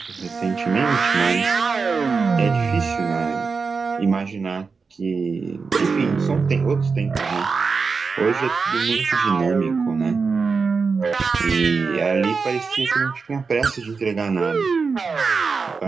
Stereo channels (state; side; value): quieter; left; 4.9 dB